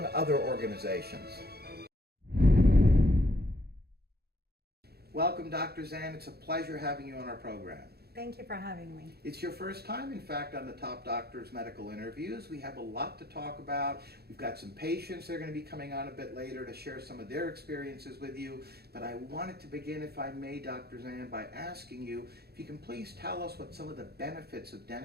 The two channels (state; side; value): late; left; 0.46 ms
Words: other organizations. Welcome, Dr. Zand. It's a pleasure having you on our program. Thank you for having me. It's your first time, in fact, on the Top Doctors Medical Interviews. We have a lot to talk about. We've got some patients that are going to be coming on a bit later to share some of their experiences with you. But I wanted to begin, if I may, Dr. Zand, by asking you if you can please tell us what some of the benefits of